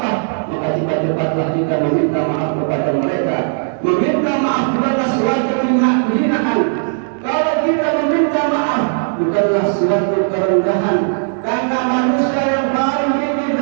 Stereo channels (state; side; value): silent; left; 65 dB below the other